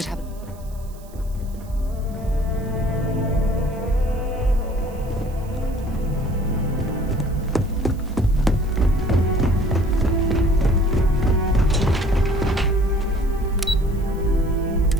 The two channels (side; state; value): right; noise; hiss, 25 dB below the sound